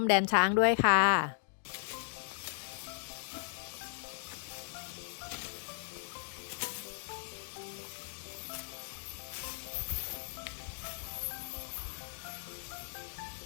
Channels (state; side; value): silent; right; digital silence